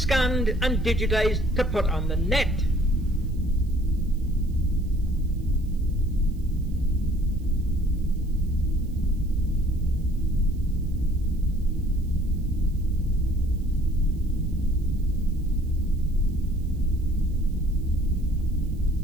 and digitized to put on the net.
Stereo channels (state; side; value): noise; right; hiss, 30 dB below the sound